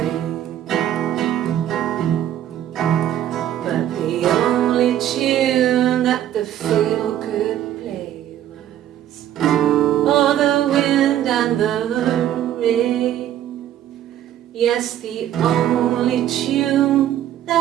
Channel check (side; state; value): left; quieter; 11.7 dB